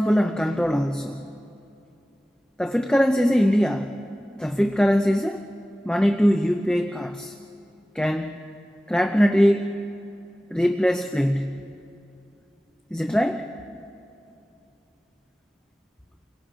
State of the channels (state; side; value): normal; both; correlation 0.97